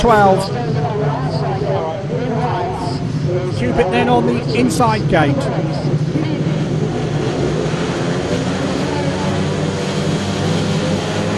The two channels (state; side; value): identical; both; correlation 1.00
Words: Cupitt then on the inside gate.